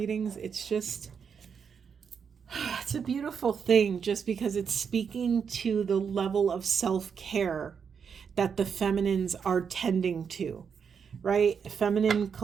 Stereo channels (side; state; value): left; quieter; 6.7 dB